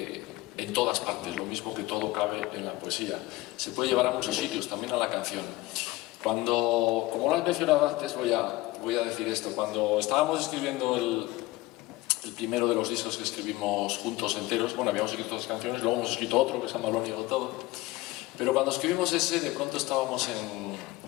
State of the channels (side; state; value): right; quieter; 19.4 dB